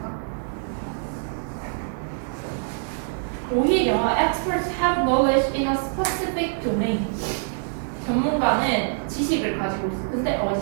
오히려 experts have knowledge in a specific domain. 전문가는 지식을 가지고 있어. 근데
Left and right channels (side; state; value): left; silent; 58 dB below the other